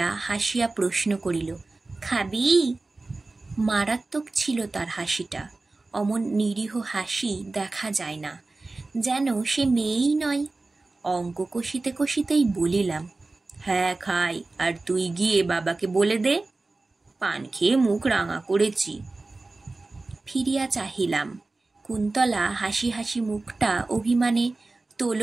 হাসিয়া প্রশ্ন করিল, খাবি? মারাত্মক ছিল তার হাসিটা। অমন নিরীহ হাসি দেখা যায় না, যেন সে মেয়েই নয়। অঙ্ক কষিতে কষিতেই বলিলাম, হ্যাঁ খাই, আর তুই গিয়ে বাবাকে বলে দে, পান খেয়ে মুখ রাঙা করেছি। ফিরিয়া চাহিলাম। কুন্তলা হাসি হাসি মুখটা অভিমানে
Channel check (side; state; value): left; quieter; 3.3 dB